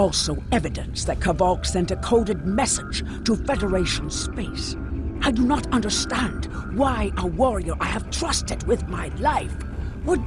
evidence that Kavok sent a coded message to Federation space. I do not understand why a warrior I have trusted with my life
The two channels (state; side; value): identical; both; correlation 1.00